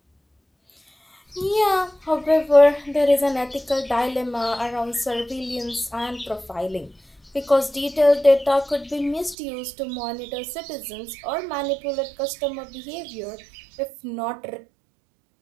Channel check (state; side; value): drops out; left; at 9.3 s